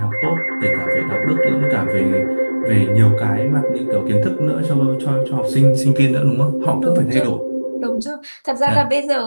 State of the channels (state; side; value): inverted; both; correlation -1.00